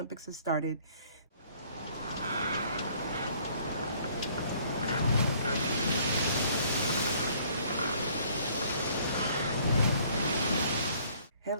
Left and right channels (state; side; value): inverted; both; correlation -0.60